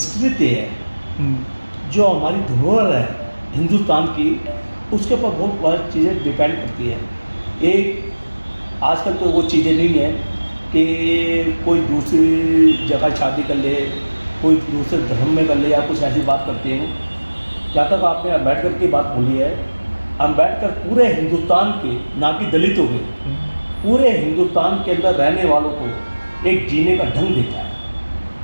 है, जो हमारी धरोहर है हिंदुस्तान की, उसके ऊपर बहुत सारी चीज़ें डिपेंड करती है। एक आजकल तो वो चीज़ें नहीं है कि कोई दूसरी जगह शादी कर ले, कोई दूसरे धर्म में कर ले या कुछ ऐसी बात करते हैं। जहाँ तक आपने अम्बेडकर की बात बोली है, अम्बेडकर पूरे हिंदुस्तान के, ना कि दलितों के, पूरे हिंदुस्तान के अंदर रहने वालों को एक जीने का ढंग देता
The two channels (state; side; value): inverted; both; correlation -1.00